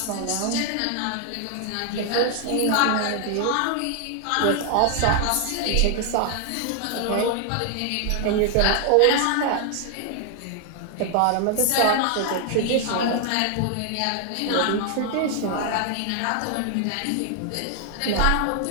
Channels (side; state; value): both; different; correlation 0.00